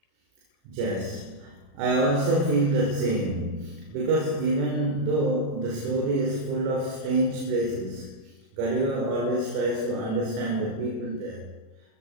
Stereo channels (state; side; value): late; left; 37 ms